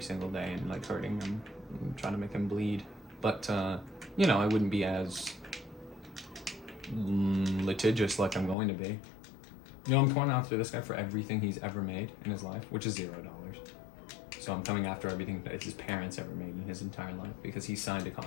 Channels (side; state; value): right; drops out; at 8.6 s